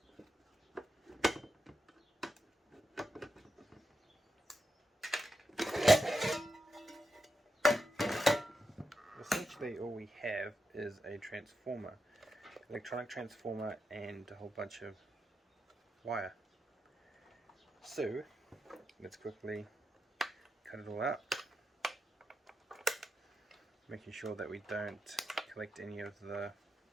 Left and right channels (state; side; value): normal; both; correlation 0.87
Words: Essentially all we have is a transformer, electronic transformer, and a whole bunch of wire. So let's quickly cut it all out, making sure that we don't collect any of the